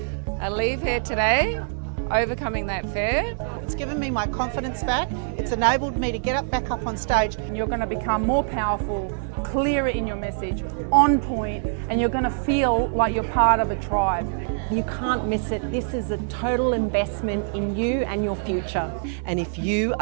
I leave here today, overcoming that fear. It's given me my confidence back. It's enabled me to get back up on stage. And you're going to become more powerful, clearer in your message, on point, and you're going to feel like you're part of a tribe. You can't miss it. This is a total investment in you and your future. And if you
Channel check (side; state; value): left; silent; 62 dB below the other